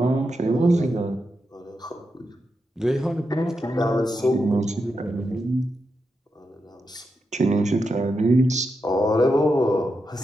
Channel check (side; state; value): both; normal; correlation 0.86